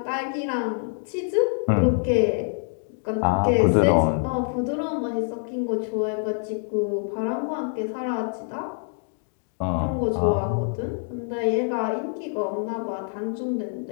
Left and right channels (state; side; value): silent; right; 60 dB below the other